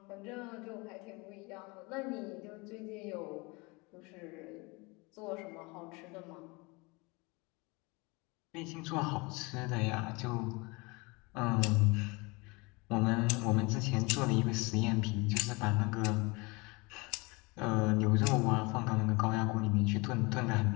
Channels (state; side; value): quieter; right; 26.6 dB